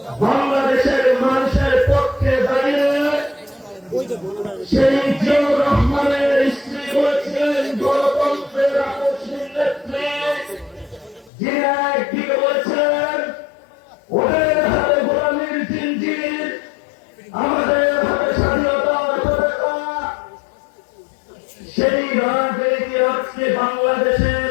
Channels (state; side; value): drops out; right; at 11.3 s